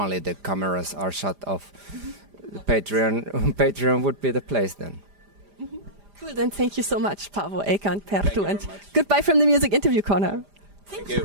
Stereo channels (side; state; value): left; late; 5.0 ms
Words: the cameras are shut off, Patreon would be the place then. Cool, then thank you so much, Paavo, Eicca and Perttu, and goodbye from the Music Interview Corner. Thank you,